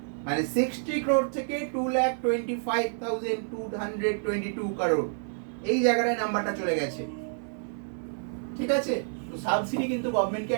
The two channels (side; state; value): left; silent; 59 dB below the other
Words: মানে 60 crore থেকে 225,222 crore, এই জায়গাটায় নাম্বারটা চলে গেছে, ঠিক আছে। তো সাবসিডি কিন্তু গভর্নমেন্টকে